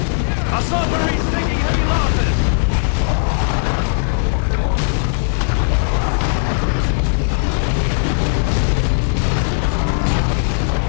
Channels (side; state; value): right; silent; digital silence